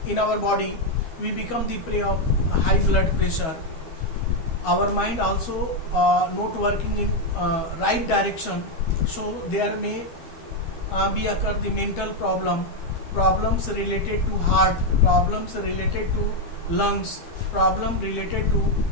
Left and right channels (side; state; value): right; late; 12 ms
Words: in our body. We become the prey of high blood pressure. Our mind also not working in right direction, so there may be occur the mental problems related to heart, problems related to lungs, problem related